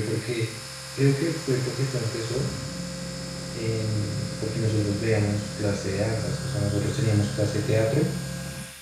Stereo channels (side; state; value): both; identical; correlation 1.00